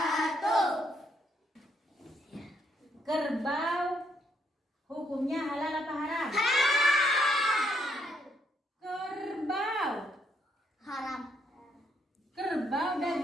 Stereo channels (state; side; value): normal; both; correlation 0.73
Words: Kerbau hukumnya halal apa haram? Kerbau. Haram. Kerbau,